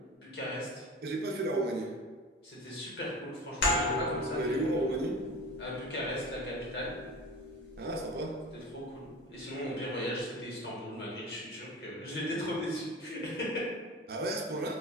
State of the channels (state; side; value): normal; both; correlation 0.34